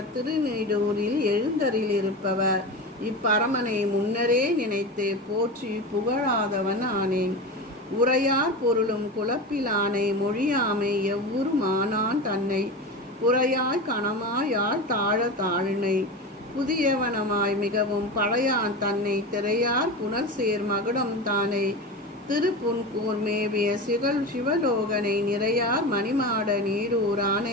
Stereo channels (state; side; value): normal; both; correlation 0.25